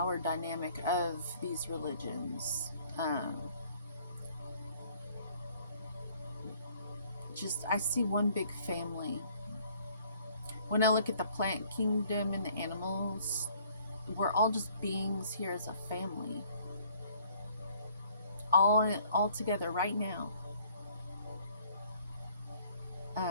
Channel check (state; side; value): inverted; both; correlation -0.59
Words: dynamic of these religions. I see one big family. When I look at the plant kingdom and the animals, we're all just beings here as a family. All together right now.